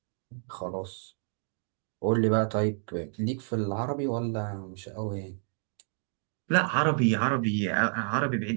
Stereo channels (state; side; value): silent; left; 58 dB below the other